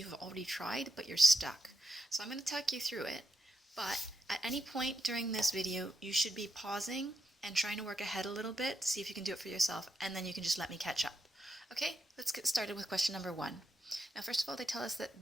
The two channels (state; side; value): normal; both; correlation 0.85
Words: have already tried, but you're stuck. So I'm going to talk you through it, but at any point during this video, you should be pausing and trying to work ahead a little bit to see if you can do it for yourself, and then you can just let me catch up. Okay, let's get started with question number 1. Now, first of all, they tell us